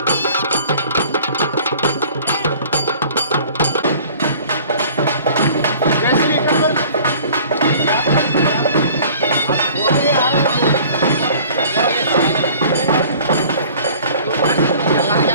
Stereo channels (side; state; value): both; inverted; correlation -0.49